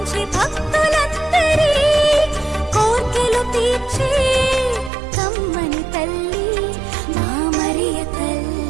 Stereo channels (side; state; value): left; drops out; at 4.9 s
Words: భక్తులందరి కోర్కెలు తీర్చి కమ్మని తల్లి మా మరియ తల్లి